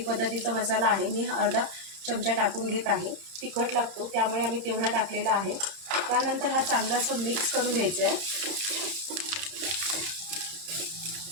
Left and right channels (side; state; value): left; late; 31 ms